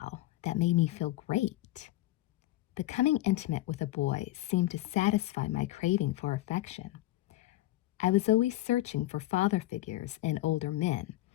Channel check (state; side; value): quieter; right; 16.3 dB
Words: that made me feel great. Becoming intimate with a boy seemed to satisfy my craving for affection. I was always searching for father figures in older men,